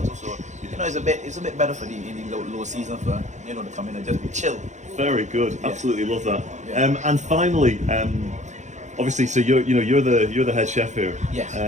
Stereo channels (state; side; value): late; left; 0.34 ms